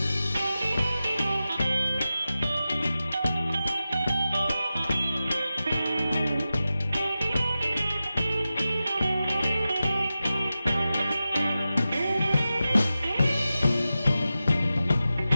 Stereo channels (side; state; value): both; inverted; correlation -0.93